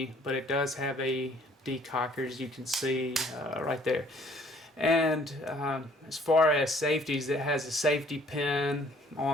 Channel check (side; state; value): both; normal; correlation 0.59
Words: but it does have a decocker, as you can see right there. And as far as safeties, it has a safety pin